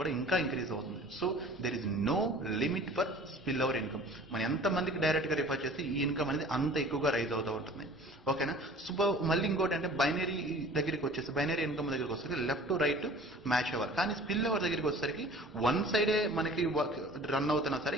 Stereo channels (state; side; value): normal; both; correlation 0.46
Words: ఇంకా ఇంక్రీజ్ అవుతుంది. So there is no limit for spill over income. మనం ఎంతమందికి డైరెక్ట్గా రిఫర్ చేస్తే ఈ ఇన్కమ్ అనేది అంత ఎక్కువగా రైజ్ అవుతూ ఉంటుంది. ఓకేనా. సో మళ్ళీ ఇంకోటి అంటే బైనరీ దగ్గరికి వచ్చేసి, బైనరీ ఇన్కమ్ దగ్గరికి వచ్చేసరికి లెఫ్ట్ టు రైట్ మ్యాచ్ అవ్వాలి. కానీ స్పిల్ ఓవర్ దగ్గరికి వచ్చేసరికి వన్ సైడే మనకి రన్ అవుతున్నా